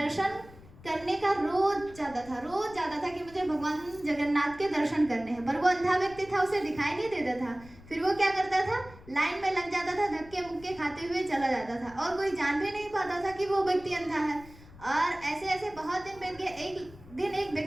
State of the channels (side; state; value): left; noise; rumble, 20 dB below the sound